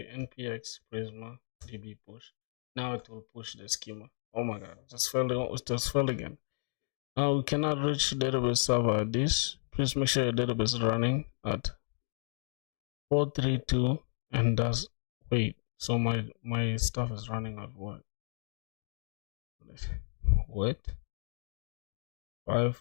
npx prisma db push. Now it will push the schema. Oh my god, just fell again. We cannot reach database server at this. Please make sure your database is running at 432, and that's wait. So my stuff is running at what? What?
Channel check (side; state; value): right; silent; 56 dB below the other